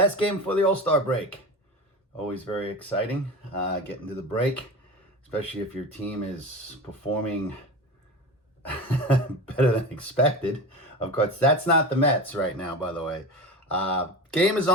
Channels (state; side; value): normal; both; correlation 0.28